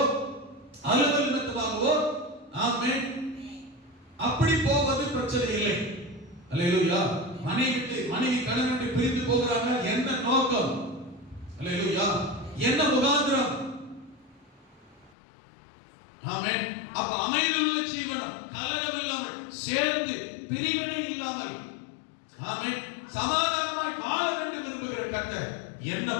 அலுவல் நிமித்தமாகவோ, ஆமென், அப்படி போவது பிரச்சனை இல்லை. அல்லேலூயா. மனைவி கணவன் விட்டு பிரிந்து போகிறாங்க, என்ன நோக்கம்? அல்லேலூயா. என்ன முகாந்திரம்? ஆமென். அப்ப அமைதியுள்ள ஜீவனம், கலகம் இல்லாமல், சேர்ந்து பிரிவினை இல்லாமல், ஆமென், சமாதானமாய் வாழ வேண்டும் விரும்புகிற கர்த்தர் என்ன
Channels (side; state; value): right; drops out; at 15.2 s